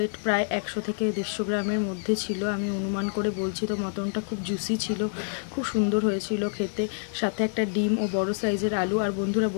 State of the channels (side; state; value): right; silent; digital silence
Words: প্রায় 100 থেকে 150 গ্রামের মধ্যে ছিল, আমি অনুমান করে বলছি। তো মটনটা খুব জুসি ছিল, খুব সুন্দর হয়েছিল খেতে, সাথে একটা ডিম ও বড় সাইজের আলু। আর বন্ধুরা